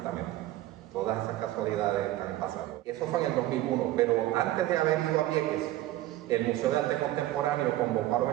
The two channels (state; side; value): quieter; left; 15.1 dB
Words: Todas esas casualidades están pasando. Eso fue en el 2001, pero antes de haber ido a Vieques, el Museo de Arte Contemporáneo convocó a los